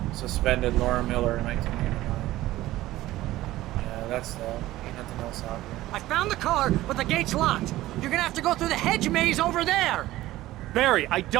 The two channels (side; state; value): left; quieter; 16.1 dB